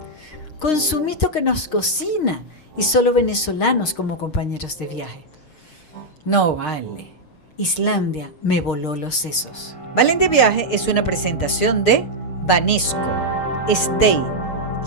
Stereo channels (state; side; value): late; right; 6.5 ms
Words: con Sumito que nos cocina y solo venezolanos como compañeros de viaje. No vale, Islandia me voló los sesos. Valen de Viaje es una presentación de Banesco, Stay,